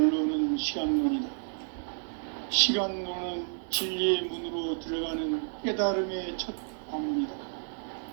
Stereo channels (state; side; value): silent; left; digital silence